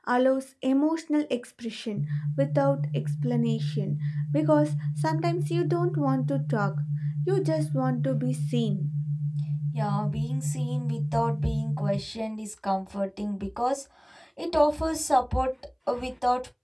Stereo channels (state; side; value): identical; both; correlation 1.00